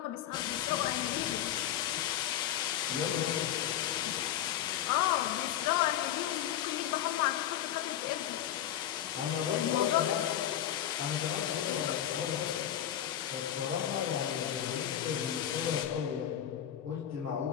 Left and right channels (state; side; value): quieter; right; 11.0 dB